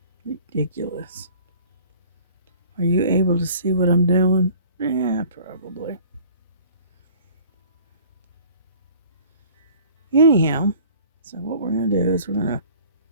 Ridiculous. Are you able to see what I'm doing? Yeah, probably. Anyhow, so what we're going to do is we're going to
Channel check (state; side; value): inverted; both; correlation -0.50